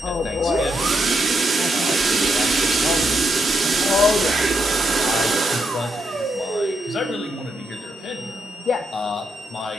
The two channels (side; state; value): both; normal; correlation 0.80